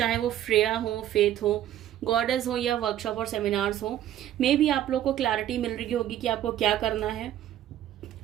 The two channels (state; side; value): quieter; left; 12.0 dB